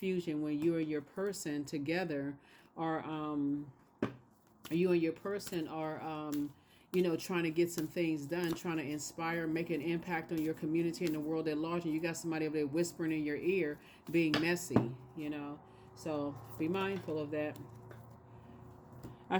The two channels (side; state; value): both; identical; correlation 1.00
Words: when you and your person together are, trying to get some things done, trying to inspire, make an impact on your community and the world at large. And you got somebody over there whispering in your ear, being messy, So be mindful of that. I